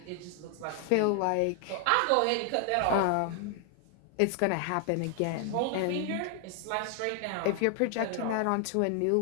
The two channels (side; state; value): both; different; correlation 0.00